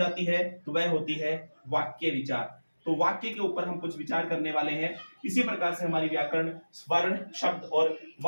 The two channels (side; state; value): both; inverted; correlation -1.00